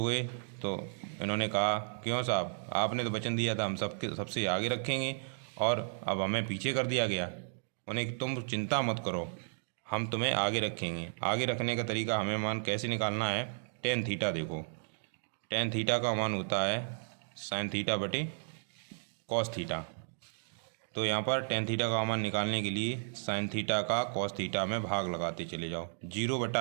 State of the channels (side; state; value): left; silent; digital silence